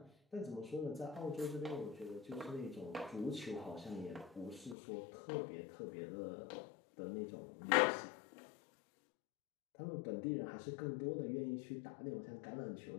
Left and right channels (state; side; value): drops out; right; at 4.8 s